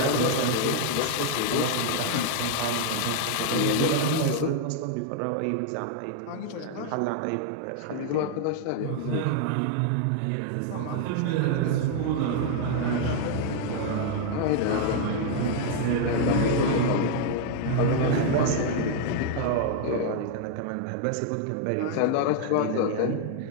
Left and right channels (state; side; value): different; both; correlation 0.00